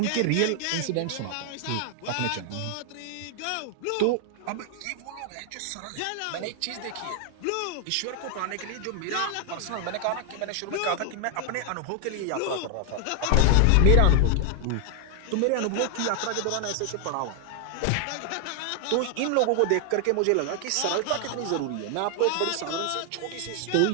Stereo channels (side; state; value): both; different; correlation 0.00